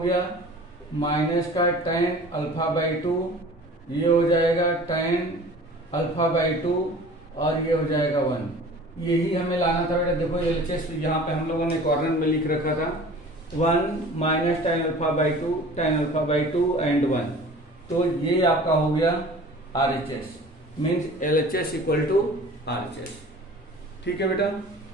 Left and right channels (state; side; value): normal; both; correlation 0.43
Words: माइनस का टेन अल्फा बाई 2, ये हो जाएगा टेन अल्फा बाई 2 और ये हो जाएगा 1। यही हमें लाना था बेटा। देखो एलएचएस यहाँ पे हम लोगों ने कॉर्नर में लिख रखा था 1 minus tan alpha by 2 tan alpha by 2 and 1, तो ये आपका हो गया RHS, means LHS equal to RHS. ठीक है बेटा,